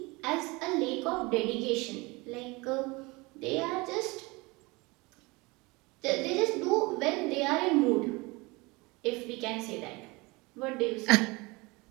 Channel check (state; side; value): quieter; left; 24.8 dB